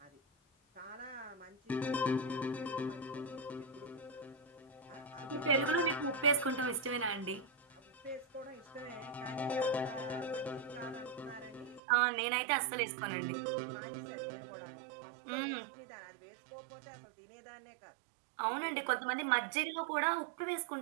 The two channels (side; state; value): left; drops out; at 11.8 s